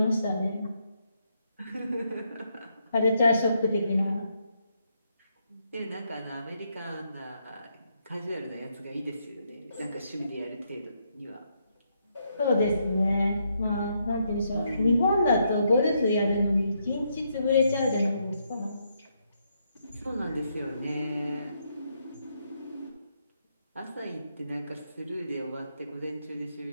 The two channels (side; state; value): both; inverted; correlation -0.77